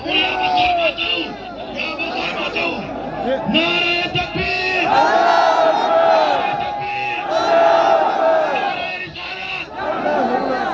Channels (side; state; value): both; identical; correlation 1.00